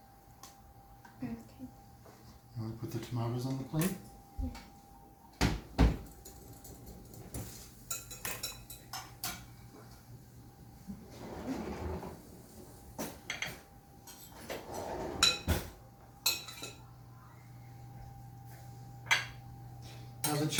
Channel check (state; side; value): identical; both; correlation 1.00